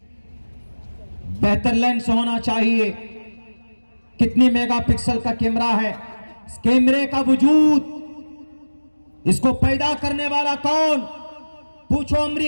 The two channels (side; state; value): both; inverted; correlation -1.00